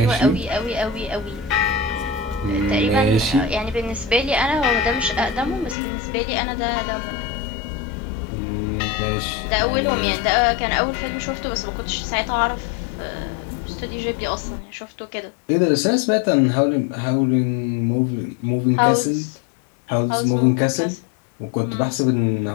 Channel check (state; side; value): drops out; right; at 5.8 s